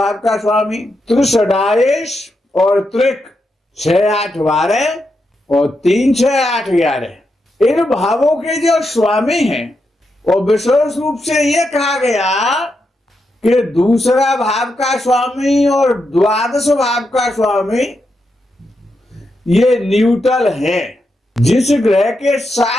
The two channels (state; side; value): normal; both; correlation 0.85